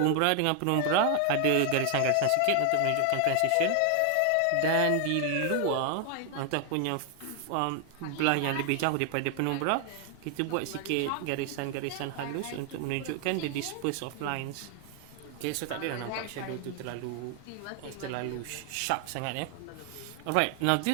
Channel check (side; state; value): both; different; correlation 0.00